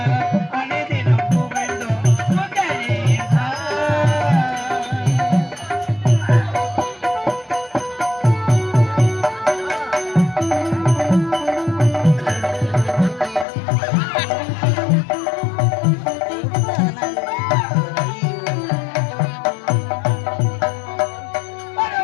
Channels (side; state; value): right; drops out; at 13.5 s